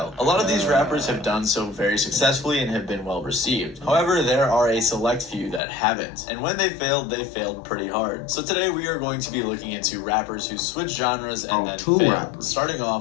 A lot of these rappers have done so very successfully and have been well received. However, there are a select few that haven't, and when they failed pretty hard. So today we are going to be looking into rappers who switch genres and then failed, starting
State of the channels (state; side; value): drops out; right; at 5.6 s